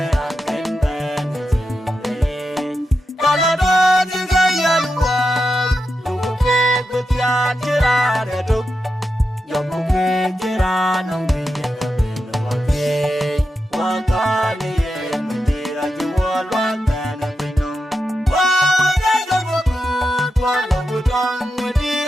a ken ben chi re ka la do ji ga yan wa lu ku ke ku tia chi ra de du yo ku ke chi ra nong bi ye ka be no wa ke wa ka ni ye ni ra ji wa lo ta na pe no wa ga ga ku ku wa lo ku tang ni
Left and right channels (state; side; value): normal; both; correlation 0.88